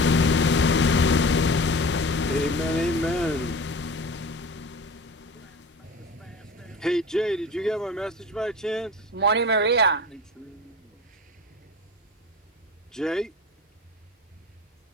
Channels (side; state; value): both; normal; correlation 0.35